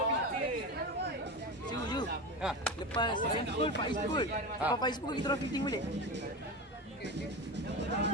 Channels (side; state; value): both; normal; correlation 0.24